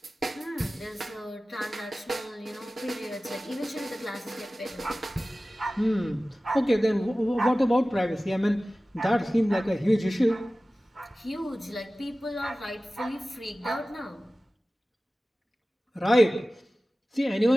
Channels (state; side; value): normal; both; correlation 0.96